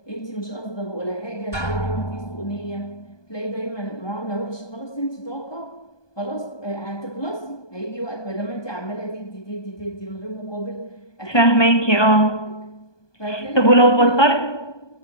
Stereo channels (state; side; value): late; right; 1.2 ms